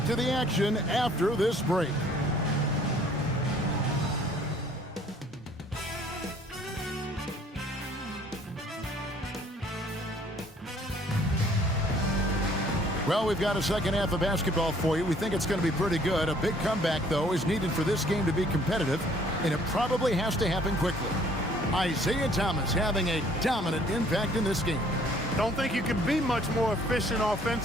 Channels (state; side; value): normal; both; correlation 0.59